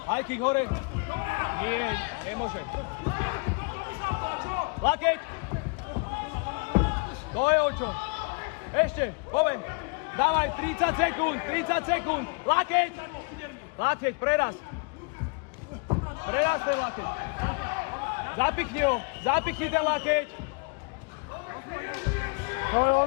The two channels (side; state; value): right; quieter; 33.4 dB